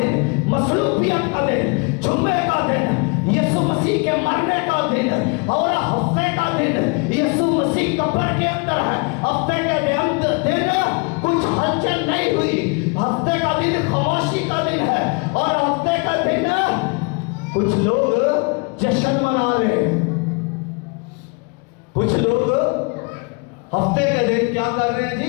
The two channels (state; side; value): quieter; right; 32.1 dB